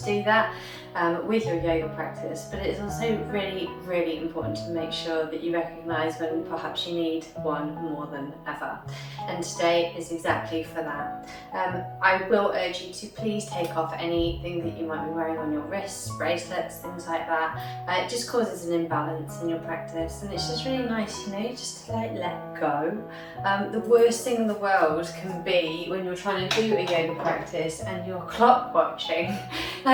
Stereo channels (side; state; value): both; identical; correlation 1.00